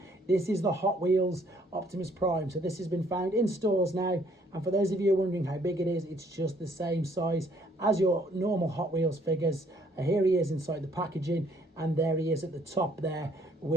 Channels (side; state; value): both; normal; correlation 0.64